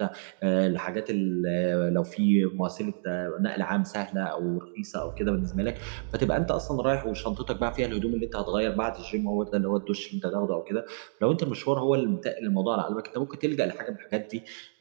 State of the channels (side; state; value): left; silent; digital silence